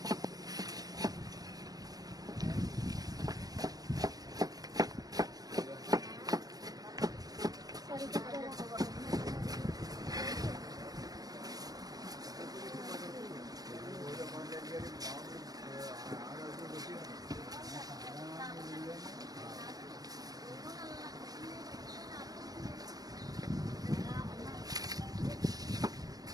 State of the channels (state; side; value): late; left; 0.18 ms